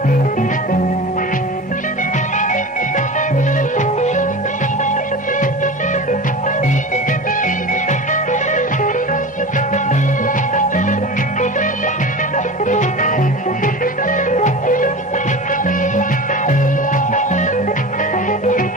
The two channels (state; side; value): normal; both; correlation 0.32